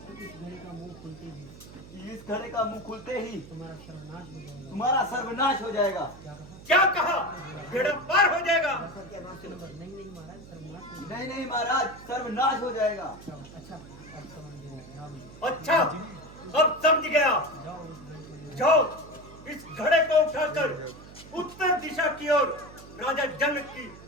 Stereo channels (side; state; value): right; noise; hum, 18 dB below the sound